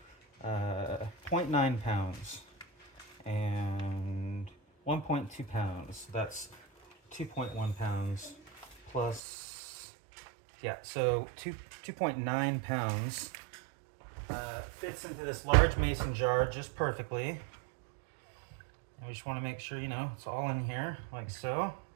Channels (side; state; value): left; drops out; at 9.2 s